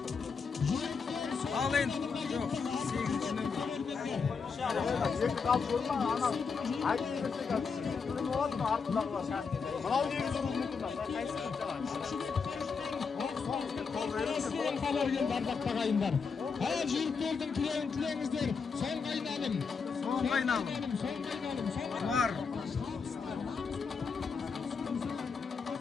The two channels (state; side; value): quieter; right; 5.4 dB